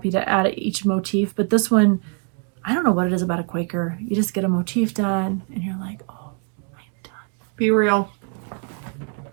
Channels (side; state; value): left; quieter; 39.3 dB